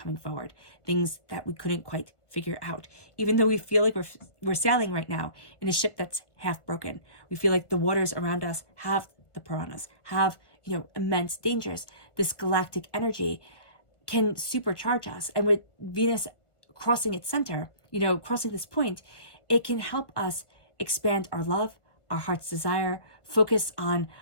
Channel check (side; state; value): right; late; 1.4 ms